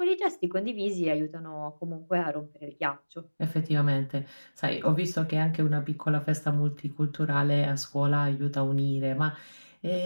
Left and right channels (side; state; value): both; inverted; correlation -1.00